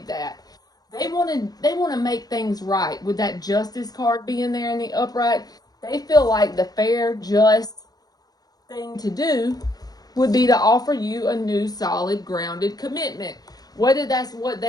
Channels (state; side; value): late; right; 0.19 ms